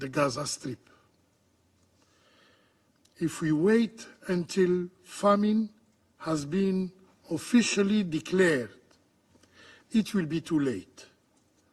Gaza Strip. If we wait until famine has been officially declared, it will be too late.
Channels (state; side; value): identical; both; correlation 1.00